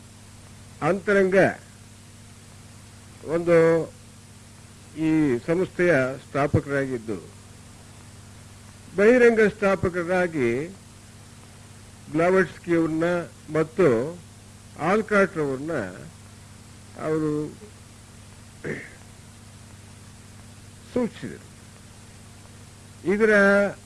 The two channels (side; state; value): both; identical; correlation 1.00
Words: ಅಂತರಂಗ ಒಂದು ಈ ಸಂಸ್ಥೆಯ ಸ್ಥಾಪಕರಾಗಿದ್ದು, ಬಹಿರಂಗ ಸ್ಥಾಪಕರಾಗಿ ಬ್ಲಾವಟ್ಸ್ಕಿ ಅವ್ರನ್ನ ಮತ್ತು ಆಲ್ಕಾಟ್ ಅವ್ರನ್ನ ಅವರು ಸೂಚಿಸಿದರು. ಇದರ